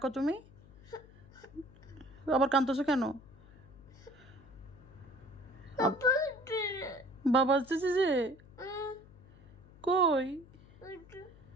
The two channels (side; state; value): left; noise; hum, 22 dB below the sound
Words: তুমি। আবার কাঁদতেছো কেন? বাবা আসতেছে যে কই?